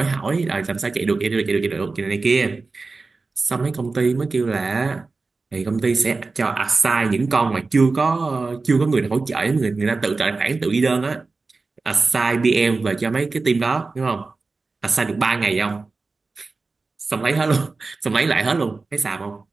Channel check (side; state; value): left; quieter; 3.9 dB